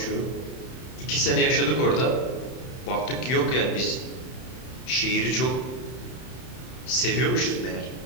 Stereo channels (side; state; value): right; late; 31 ms